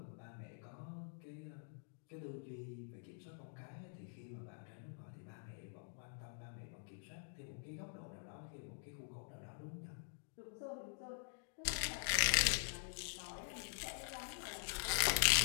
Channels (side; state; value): right; silent; digital silence